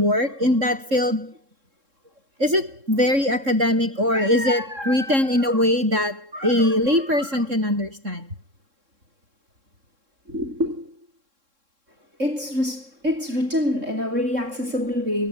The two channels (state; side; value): late; left; 3.7 ms